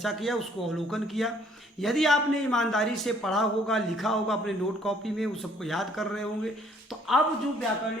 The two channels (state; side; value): normal; both; correlation 0.62